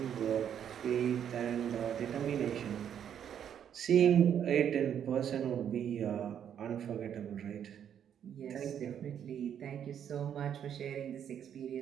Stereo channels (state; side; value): quieter; left; 9.0 dB